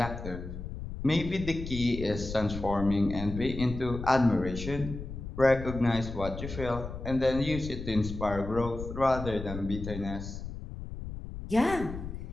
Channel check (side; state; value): left; noise; rumble, 8 dB below the sound